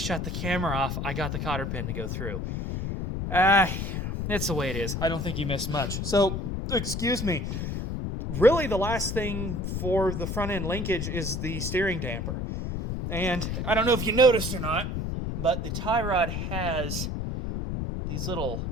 the camera off, I got the cotter pin to go through. It's the way it is. I don't think you missed much. So, excuse me. Really, the last thing for the front end linkage is the steering damper. And I don't know if you noticed or not, but the tie rod has these little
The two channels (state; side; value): noise; left; rumble, 3 dB below the sound